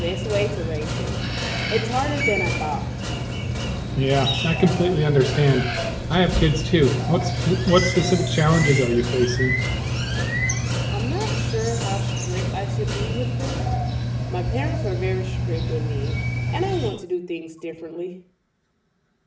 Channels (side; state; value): both; identical; correlation 1.00